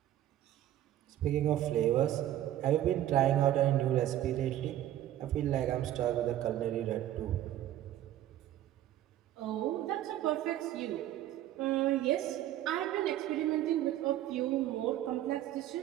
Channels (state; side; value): quieter; left; 12.8 dB